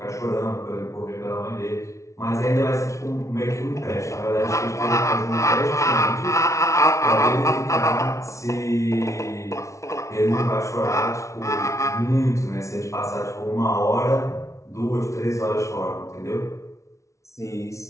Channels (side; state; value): right; late; 0.14 ms